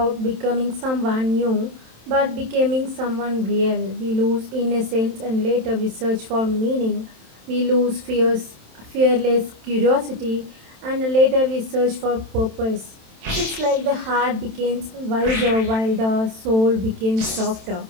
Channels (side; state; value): left; late; 27 ms